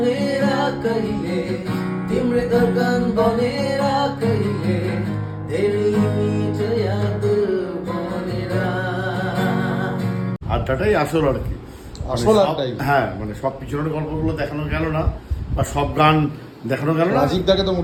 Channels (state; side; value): identical; both; correlation 1.00